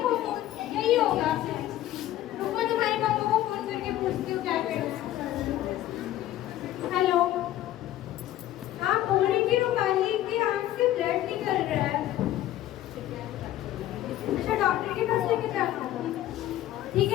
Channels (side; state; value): right; quieter; 13.6 dB